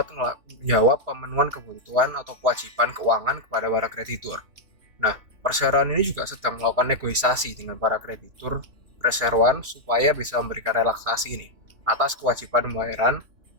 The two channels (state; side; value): late; left; 3.1 ms